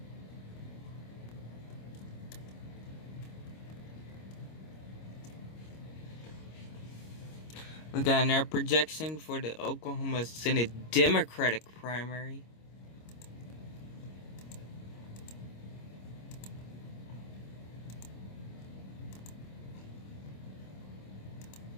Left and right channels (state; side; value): late; right; 26 ms